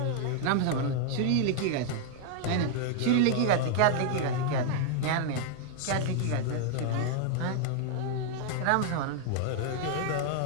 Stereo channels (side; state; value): both; different; correlation 0.00